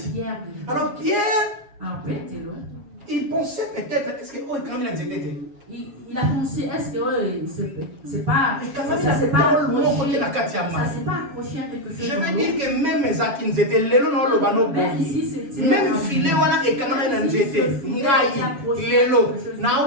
Alors Pierre Il pensait peut-être, est-ce que oh, quand même il a pensé, est-ce que c'est pas, ça s'est pas accroché à quelque chose. Je veux dire que même mes acquis étaient lelo no lo bano même filet wana et quand même nzete ngai lelo na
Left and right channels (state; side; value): late; left; 7.3 ms